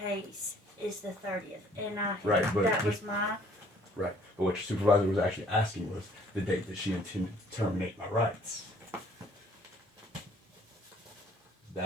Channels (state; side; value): normal; both; correlation 0.58